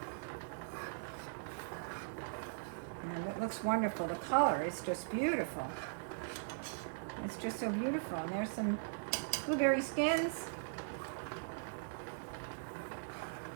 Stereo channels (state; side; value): silent; left; 51 dB below the other